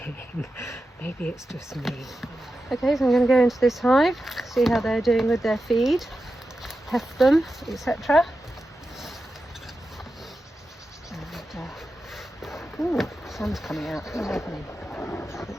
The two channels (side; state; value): both; normal; correlation 0.91